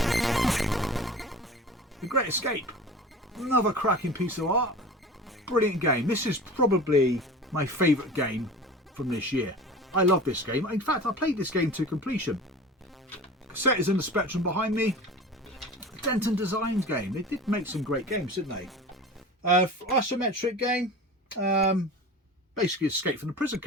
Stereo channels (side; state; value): both; normal; correlation 0.37